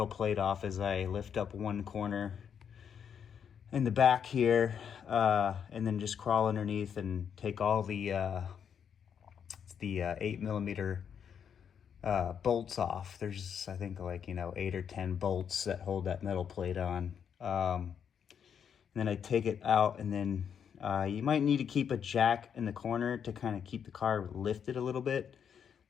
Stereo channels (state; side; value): quieter; right; 7.8 dB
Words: plate off is I lift up one corner in the back here, and then just crawl underneath and take all the 8mm bolts off. There's, I think, like, 8 or 10 bolts that hold that metal plate on. And then I take it out, and then you might need to keep a jack in the corner to kind of keep the car lifted a little bit,